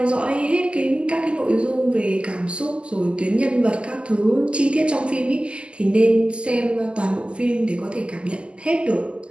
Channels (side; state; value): left; late; 0.052 ms